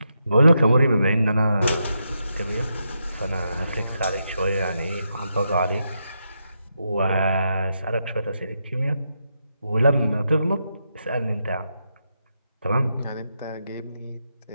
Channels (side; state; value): both; inverted; correlation -0.83